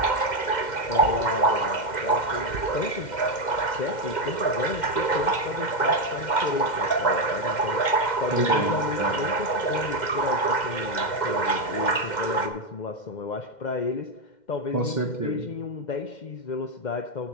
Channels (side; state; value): right; late; 2.1 ms